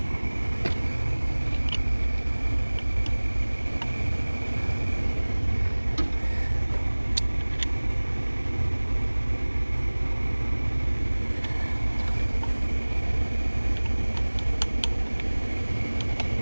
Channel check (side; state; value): both; inverted; correlation -1.00